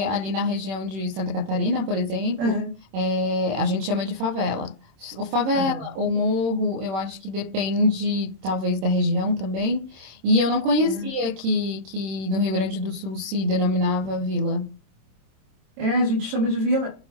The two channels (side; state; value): left; late; 26 ms